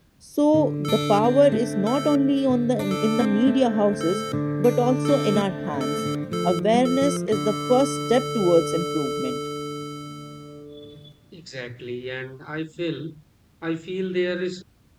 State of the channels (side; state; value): both; identical; correlation 1.00